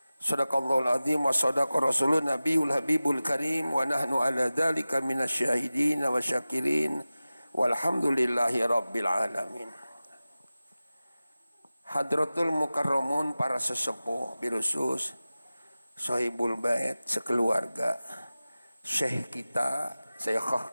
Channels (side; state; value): both; inverted; correlation -0.96